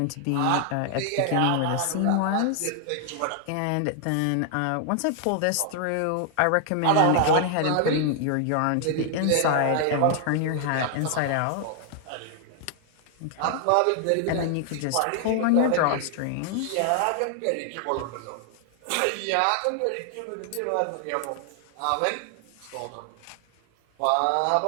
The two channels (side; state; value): both; different; correlation 0.00